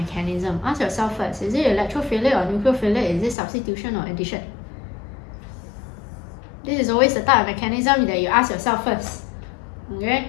Ask yourself first, is it electrophilic or nucleophilic? Is it substitution or addition? This is always the type of mechanism that you ask yourself first. Okay?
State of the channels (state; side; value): drops out; right; at 3.4 s